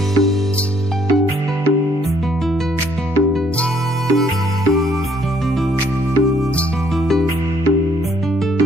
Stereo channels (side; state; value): both; normal; correlation 0.65